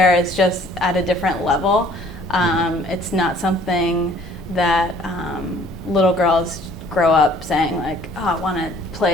is just at a different level. It's not something that little girls grow up saying like, oh, I want to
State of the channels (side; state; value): both; normal; correlation 0.56